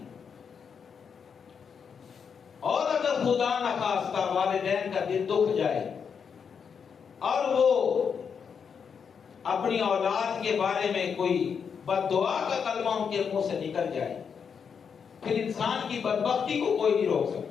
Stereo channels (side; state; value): right; quieter; 6.6 dB